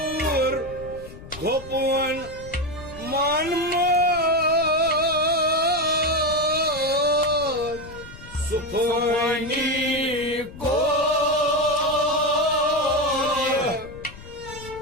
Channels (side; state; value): left; noise; rumble, 16 dB below the sound